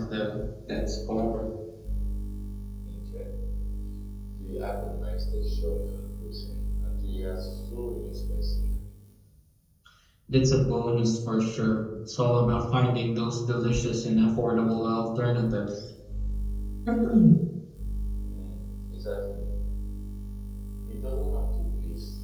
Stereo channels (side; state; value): both; identical; correlation 1.00